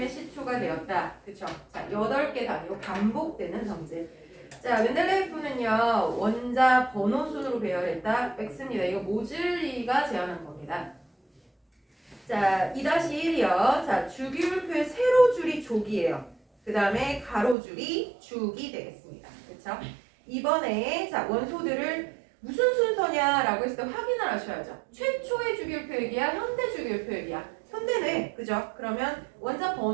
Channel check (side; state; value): left; drops out; at 17.6 s